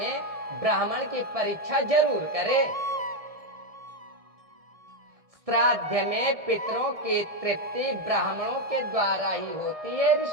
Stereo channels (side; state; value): left; late; 1.7 ms